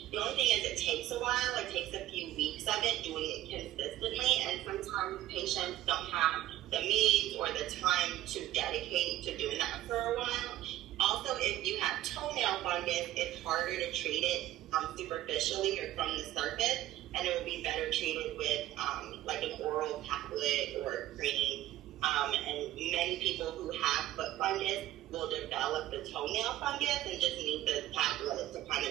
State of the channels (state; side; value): quieter; left; 14.3 dB